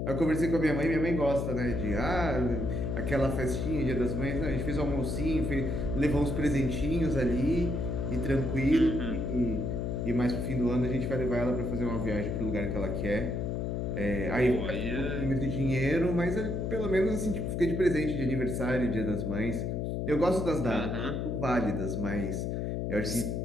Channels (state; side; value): noise; left; hum, 1 dB below the sound